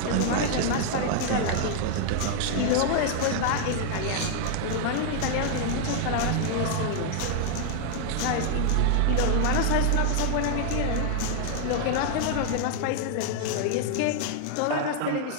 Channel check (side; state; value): both; different; correlation 0.00